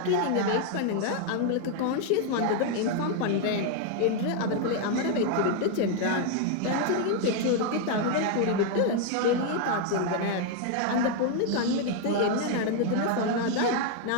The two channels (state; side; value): different; both; correlation 0.00